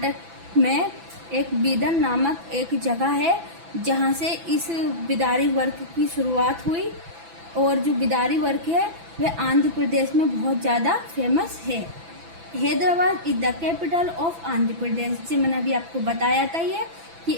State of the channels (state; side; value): late; left; 6.0 ms